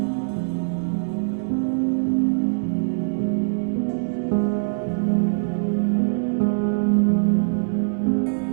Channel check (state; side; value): silent; left; digital silence